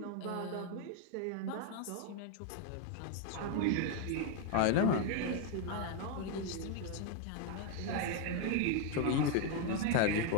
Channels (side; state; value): both; different; correlation 0.01